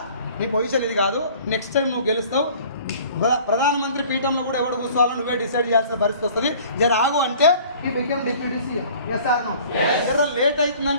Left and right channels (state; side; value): inverted; both; correlation -0.50